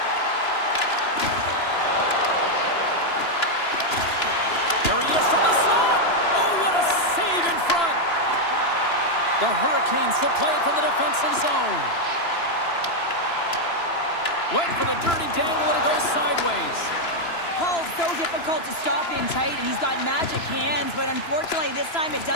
There he is from the slot. Oh, what a save in front. The Hurricanes will play it from the defensive zone. Went for the dirty dangle, and it goes sideways. Paul's so difficult to stop in tight, and he's got magic hands, but unfortunately this time it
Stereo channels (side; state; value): right; late; 2.9 ms